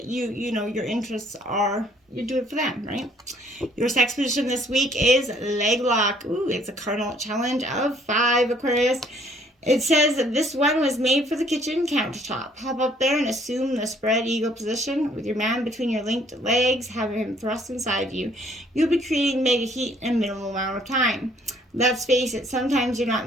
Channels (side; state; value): both; normal; correlation 0.61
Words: you know your interests are, you do it for them, right? Your sex position this week is leg lock. Ooh, it's a cardinal challenge of 5, Aquarius. It says that this one was made for the kitchen countertop. Hop up there and assume the spread eagle position with your man between your linked legs, having him thrust inside you. You'll be creating mega heat in a minimal amount of time. Let's face it, sometimes you're not